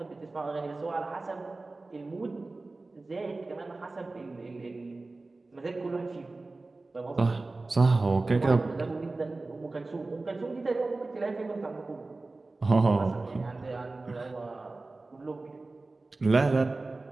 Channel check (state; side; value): quieter; left; 3.3 dB